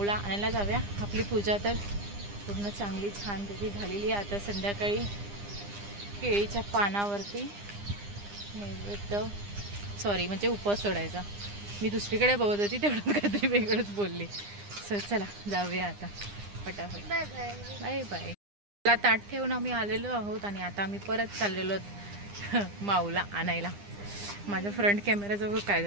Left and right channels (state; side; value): late; left; 9.9 ms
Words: आणायला जाऊया. आपली पूजा तर पूर्ण चांगली छानपैकी झालेली आहे. आता संध्याकाळी केळीच्या पानावरती नैवेद्य म्हणजे उपवास सोडायचा. मी दुसरीकडे बघत होती तेवढं काहीतरी वेगळंच बोलली. सो चला जाऊया आता फटाफट. Bye bye bye bye. मला ताट ठेवून आम्ही आलेलो आहोत आणि आता आम्ही परत चाललेलो माऊला आणायला. माझ्या फ्रंट कॅमेराजवळ काय